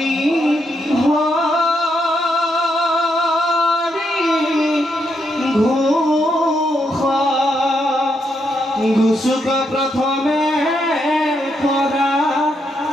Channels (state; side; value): normal; both; correlation 0.79